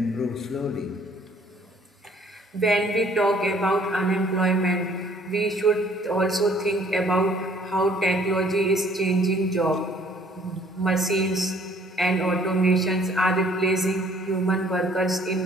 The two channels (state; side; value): normal; both; correlation 0.59